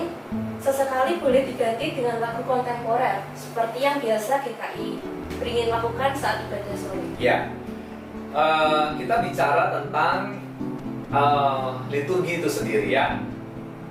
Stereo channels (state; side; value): identical; both; correlation 1.00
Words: sesekali boleh diganti dengan lagu kontemporer seperti yang biasa GKI beringin lakukan saat ibadah sore? Ya, kita bicara tentang liturgi itu sendiri ya.